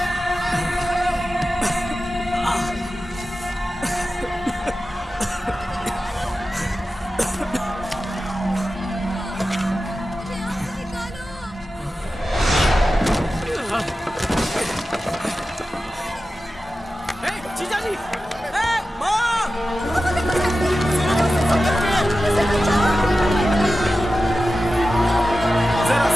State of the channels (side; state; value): both; normal; correlation 0.93